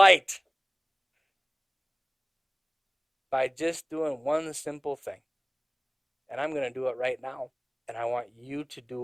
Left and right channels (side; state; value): both; identical; correlation 1.00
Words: by just doing one simple thing. And I'm going to do it right now, and I want you to